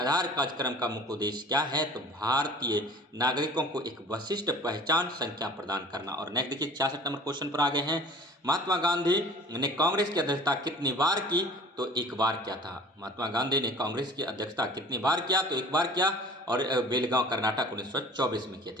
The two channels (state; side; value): normal; both; correlation 0.45